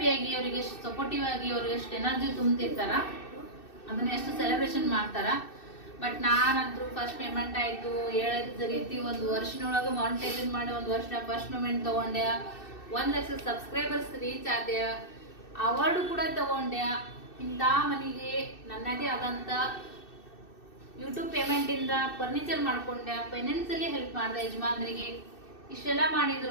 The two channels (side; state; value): right; late; 2.6 ms